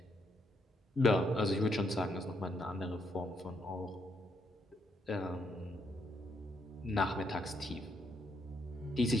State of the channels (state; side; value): normal; both; correlation 0.76